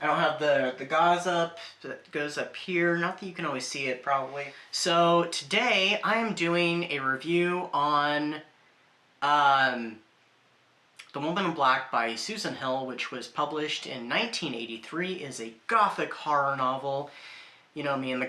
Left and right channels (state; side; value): identical; both; correlation 1.00